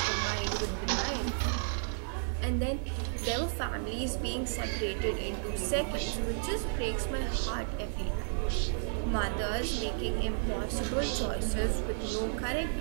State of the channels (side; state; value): left; silent; 56 dB below the other